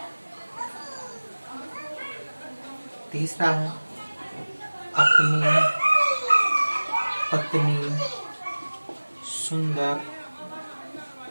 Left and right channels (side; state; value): both; inverted; correlation -1.00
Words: तीसरा है अपनी पत्नी सुंदर,